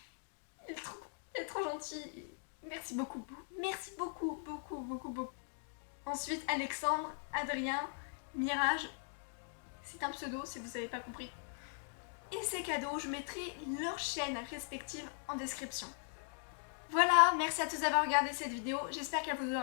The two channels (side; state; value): right; silent; digital silence